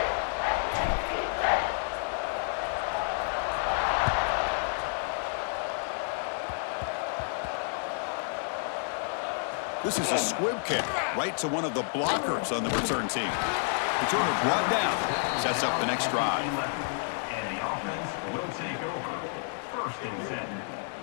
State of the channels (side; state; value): right; silent; 58 dB below the other